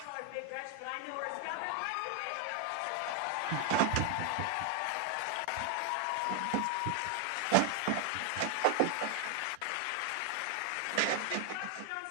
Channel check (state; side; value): different; both; correlation 0.00